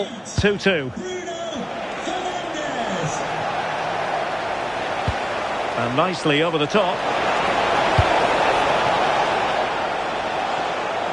2-2. And nicely over the top.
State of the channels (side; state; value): both; identical; correlation 1.00